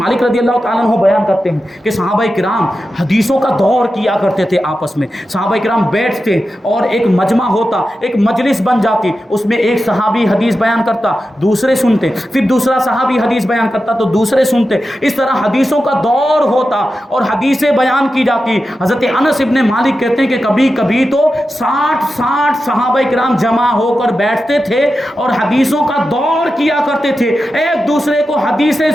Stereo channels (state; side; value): normal; both; correlation 0.91